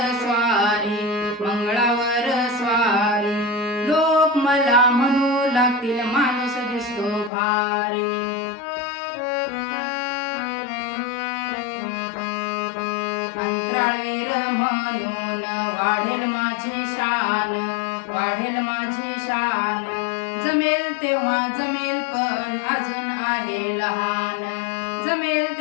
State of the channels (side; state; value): right; drops out; at 7.3 s